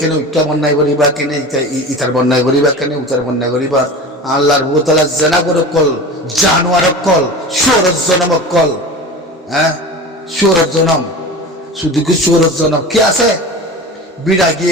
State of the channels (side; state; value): both; normal; correlation 0.32